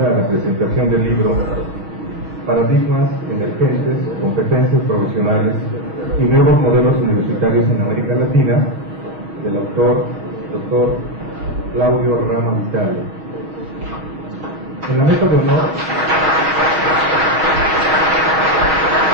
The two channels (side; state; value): left; late; 6.3 ms